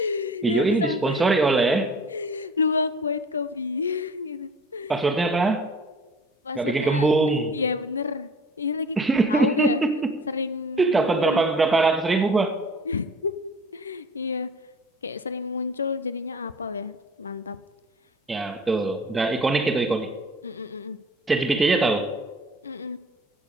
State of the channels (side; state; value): both; normal; correlation 0.47